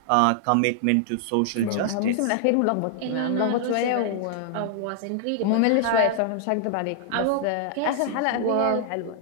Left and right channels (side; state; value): both; different; correlation -0.01